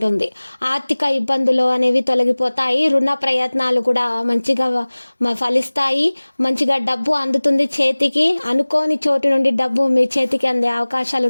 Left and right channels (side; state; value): both; inverted; correlation -1.00